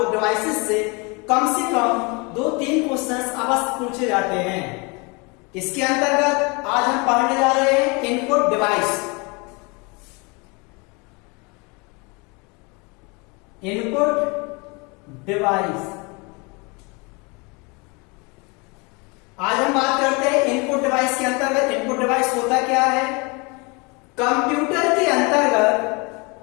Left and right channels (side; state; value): right; quieter; 29.0 dB